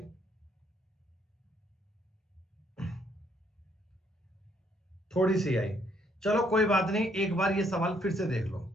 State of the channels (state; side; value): normal; both; correlation 0.69